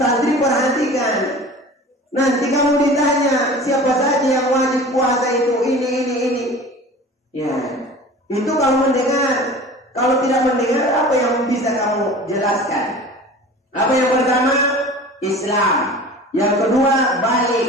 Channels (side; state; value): both; normal; correlation 0.40